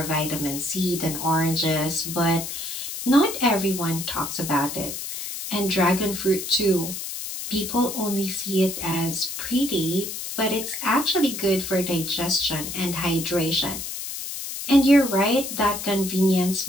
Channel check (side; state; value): left; noise; hiss, 7 dB below the sound